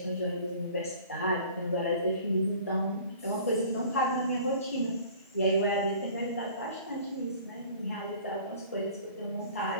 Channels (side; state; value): both; inverted; correlation -0.48